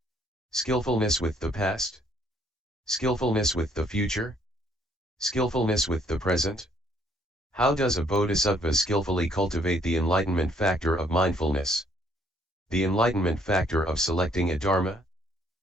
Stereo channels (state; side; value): normal; both; correlation 0.66